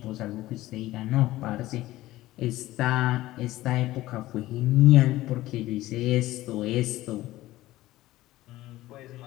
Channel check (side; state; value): right; quieter; 16.5 dB